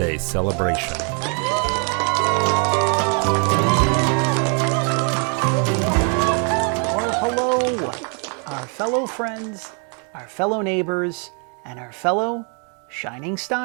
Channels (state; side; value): quieter; left; 39.6 dB